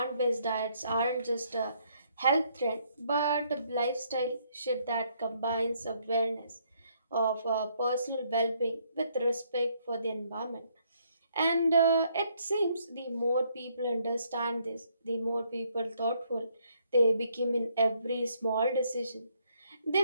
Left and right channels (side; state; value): both; inverted; correlation -0.70